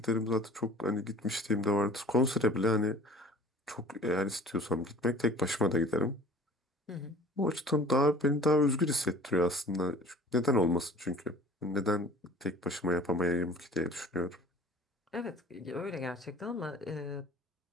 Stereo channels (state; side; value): normal; both; correlation 0.46